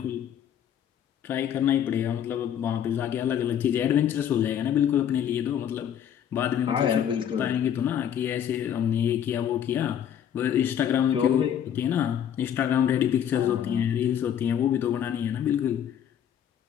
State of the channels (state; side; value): quieter; right; 9.5 dB